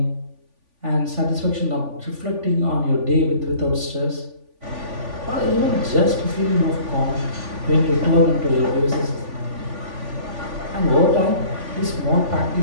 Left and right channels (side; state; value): left; late; 3.5 ms